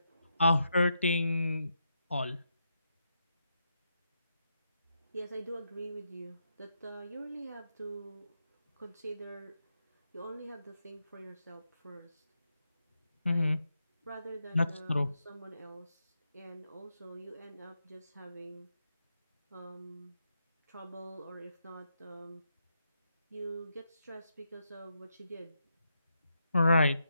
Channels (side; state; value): both; inverted; correlation -0.83